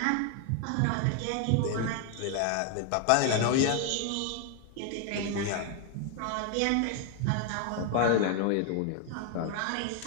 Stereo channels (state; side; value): different; both; correlation 0.00